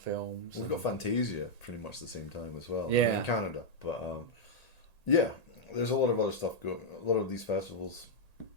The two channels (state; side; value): late; right; 1.8 ms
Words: We've got Fantasia pretty much the same time as well. Yeah, in Canada, but there's a lot of other stuff going. A lot of these festivals,